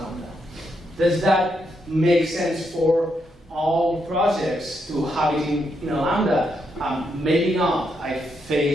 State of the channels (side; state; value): both; normal; correlation 0.80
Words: Does that make sense for all projects to have it in a Lambda? Maybe not. I